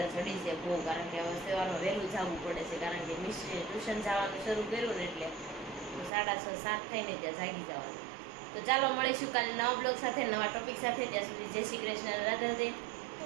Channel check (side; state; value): left; drops out; at 6.1 s